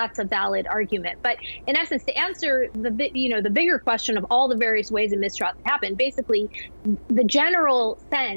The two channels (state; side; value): inverted; both; correlation -1.00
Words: a valid argument. But in essence, to answer the bigger question of all the various ways a mistrial can happen, basically, the general